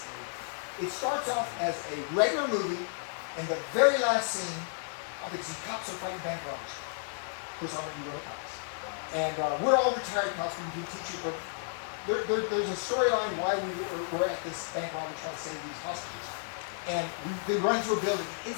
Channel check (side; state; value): right; silent; 56 dB below the other